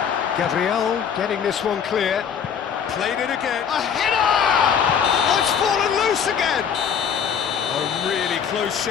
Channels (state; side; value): quieter; right; 7.5 dB